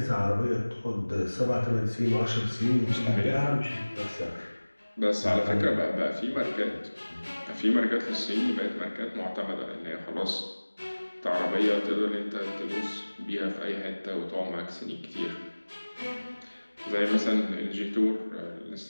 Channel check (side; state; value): both; inverted; correlation -1.00